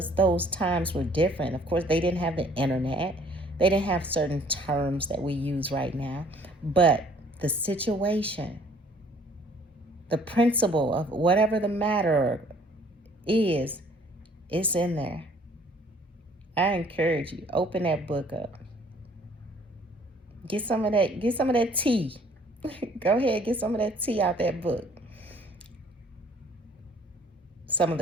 those times were different. Of course, they didn't have the internet. They didn't have certain terms that we use right now. But the situation, the principle of whatever the matter is, it's in there. I encourage you, open that book up. Get some of that tea. Go ahead, get some of that tea out that book. Some of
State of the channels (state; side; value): normal; both; correlation 0.57